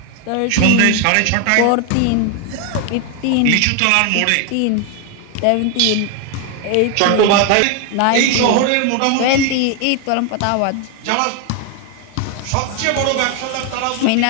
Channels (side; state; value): both; different; correlation 0.01